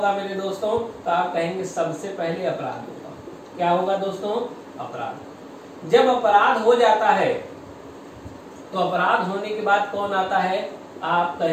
मेरे दोस्तों। तो आप कहेंगे सबसे पहले अपराध होगा। क्या होगा दोस्तों? अपराध। जब अपराध हो जाता है तो अपराध होने के बाद कौन आता है? आप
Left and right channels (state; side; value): identical; both; correlation 1.00